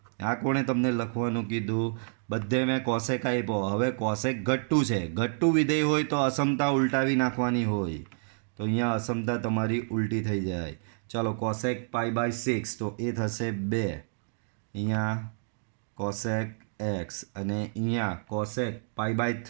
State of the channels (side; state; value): left; silent; digital silence